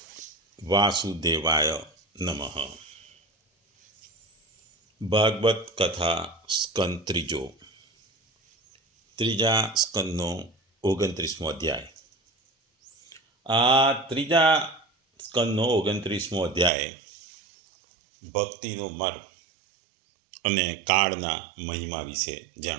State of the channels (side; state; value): left; drops out; at 16.7 s